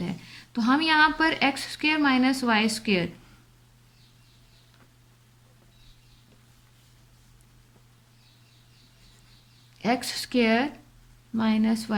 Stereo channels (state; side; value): identical; both; correlation 1.00